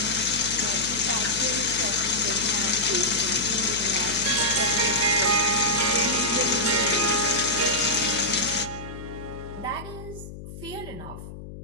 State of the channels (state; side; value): noise; left; hum, 13 dB below the sound